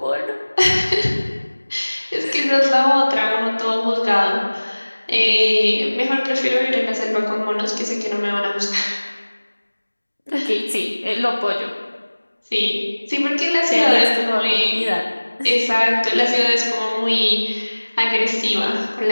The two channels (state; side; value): inverted; both; correlation -1.00